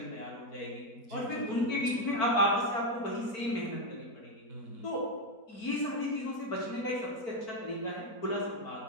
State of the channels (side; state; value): right; late; 4.5 ms